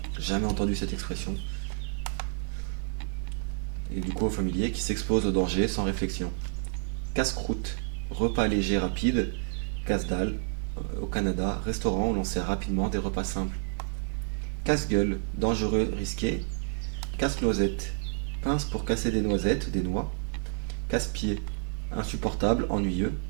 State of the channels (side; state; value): left; silent; 58 dB below the other